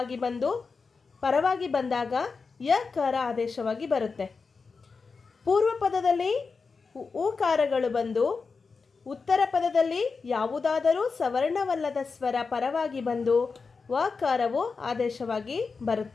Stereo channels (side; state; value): right; quieter; 4.7 dB